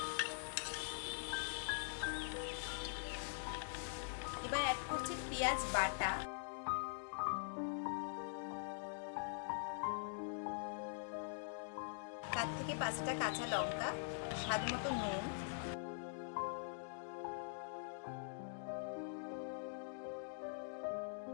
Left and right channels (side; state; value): right; silent; digital silence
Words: এবার অ্যাড করছি পেঁয়াজ বাটা, 4 থেকে 5টা কাঁচা লঙ্কা, স্বাদ মতো নুন,